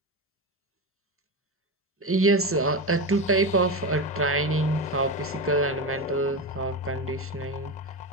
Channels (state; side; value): normal; both; correlation 0.19